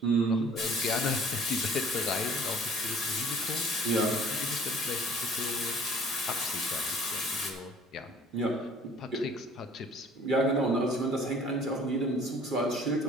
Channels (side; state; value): both; normal; correlation 0.52